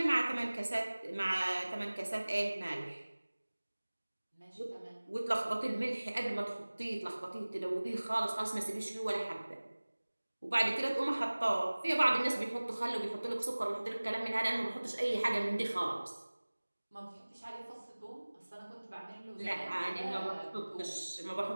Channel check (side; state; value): both; inverted; correlation -1.00